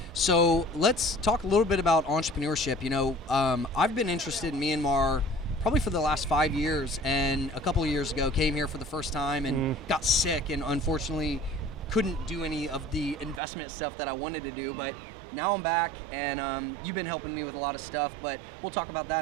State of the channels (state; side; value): drops out; left; at 13.4 s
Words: So let's talk a little bit about entrepreneurship. I've been interested in Myanmar probably for the last 5 years, and a couple of years ago came here for the first time and got sick, and unfortunately couldn't do any of the investment stuff that I wanted to do. But now I'm back, and you've been helping me with a lot of stuff, but we'll talk about that